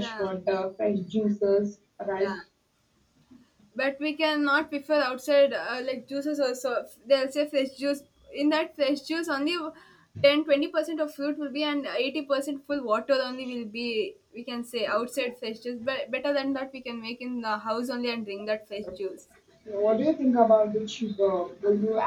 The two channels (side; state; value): both; identical; correlation 1.00